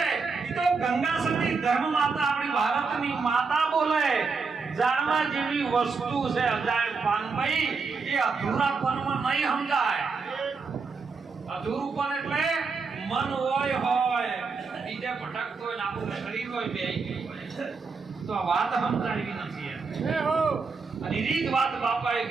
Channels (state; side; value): quieter; left; 4.7 dB